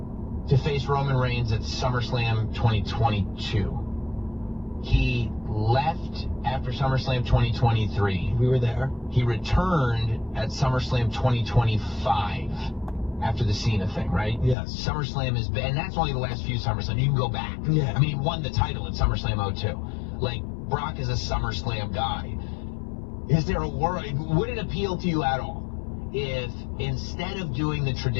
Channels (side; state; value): right; drops out; at 14.6 s